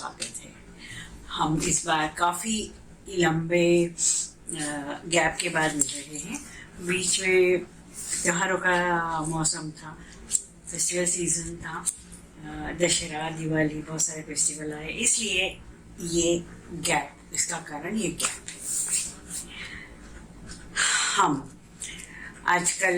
है। हम इस बार काफ़ी लंबे गैप के बाद मिल रहे हैं। बीच में त्योहारों का मौसम था, फेस्टिवल सीजन था, दशहरा, दिवाली, बहुत सारे फेस्टिवल आए, इसलिए ये गैप, इसका कारण ये गैप है। हम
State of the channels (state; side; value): identical; both; correlation 1.00